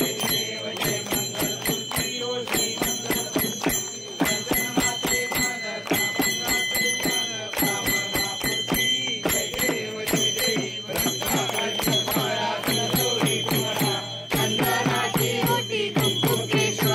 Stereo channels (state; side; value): identical; both; correlation 1.00